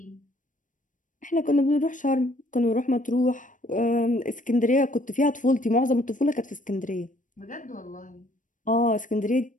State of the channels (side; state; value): right; late; 0.38 ms